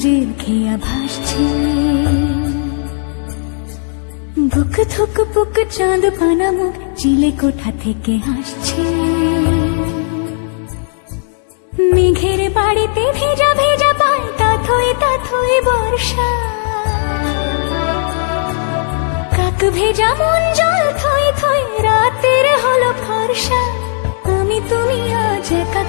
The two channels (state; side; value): silent; right; digital silence